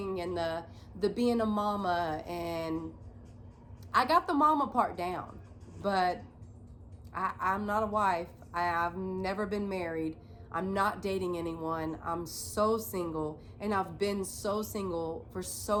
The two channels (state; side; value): identical; both; correlation 1.00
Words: and the being a mama, and I got the mama part down, but I'm not a wife. I've never been married. I'm not dating anyone. I'm so single, and I've been so single for